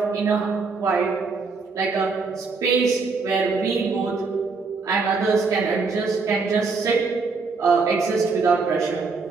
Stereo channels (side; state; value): left; quieter; 4.4 dB